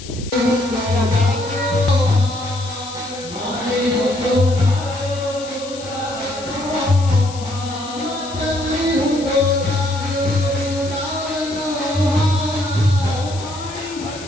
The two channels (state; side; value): noise; left; hiss, 15 dB below the sound